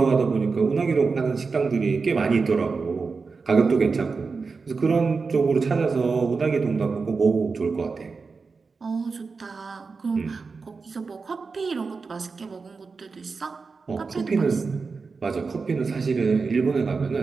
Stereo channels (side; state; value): left; quieter; 4.6 dB